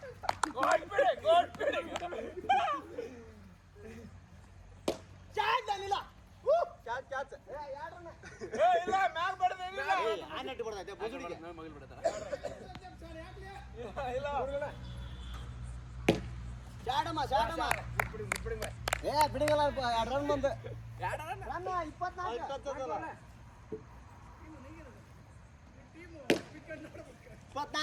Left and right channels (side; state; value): both; identical; correlation 1.00